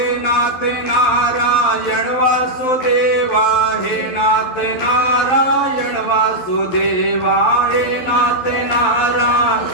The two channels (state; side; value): late; right; 12 ms